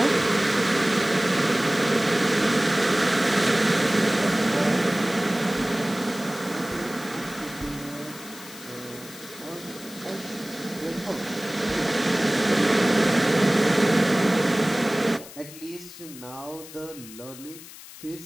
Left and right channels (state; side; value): noise; left; hiss, 16 dB below the sound